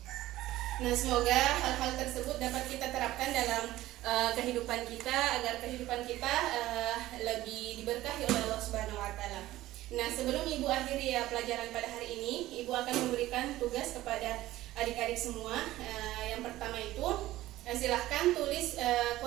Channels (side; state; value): left; quieter; 15.8 dB